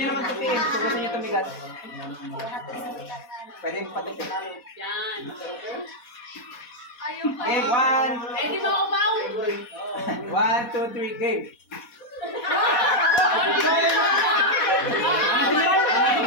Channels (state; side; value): late; right; 4.1 ms